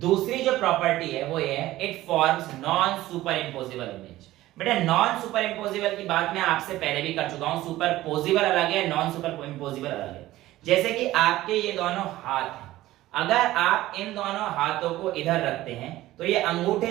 जो प्रॉपर्टी है वो ये है it forms non super imposable image. बेटा नॉन सुपर इम्पोजिबल की बात मैं आपसे पहले भी कर चुका हूं, सुपर पोजिबल अलग है, नॉन सुपर इम्पोजिबल अलग है। जैसे कि आपके ये दोनों हाथ हैं, अगर आप इन दोनों हाथों को इधर रखते हैं तो ये अंगूठे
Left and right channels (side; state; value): left; quieter; 16.0 dB